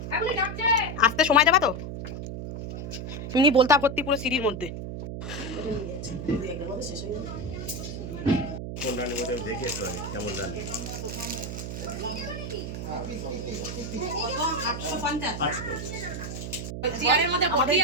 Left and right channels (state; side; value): noise; right; hum, 6 dB below the sound